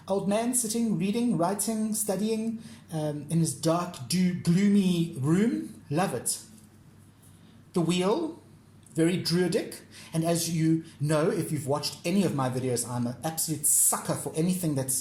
old man sitting, reading, writing, studying in his dark, gloomy room. Love it. The Wheel, very druidic, and as you know, if you've watched any of my videos, I'm an absolute sucker for anything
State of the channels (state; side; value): identical; both; correlation 1.00